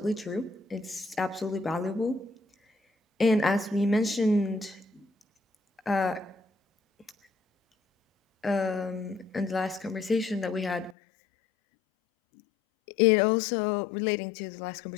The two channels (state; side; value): drops out; right; at 11.0 s